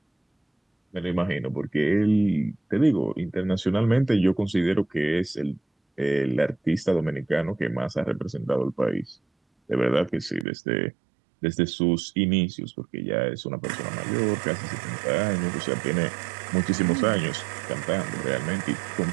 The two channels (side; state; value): left; drops out; at 10.5 s